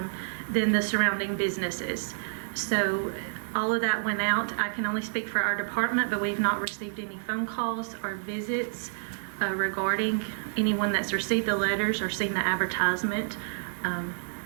then the surrounding businesses. So all of that went out. I can only speak for our department, but we've not received any phone calls or visits regarding anyone that's received the letters or seen the advertisement.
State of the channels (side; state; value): left; silent; 59 dB below the other